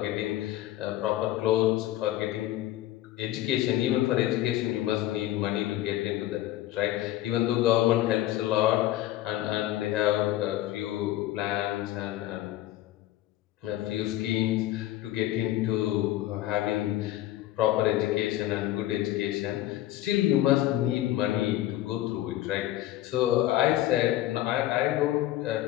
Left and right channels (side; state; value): right; quieter; 14.5 dB